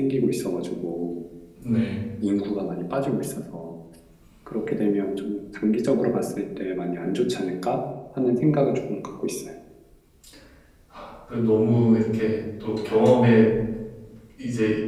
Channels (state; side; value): identical; both; correlation 1.00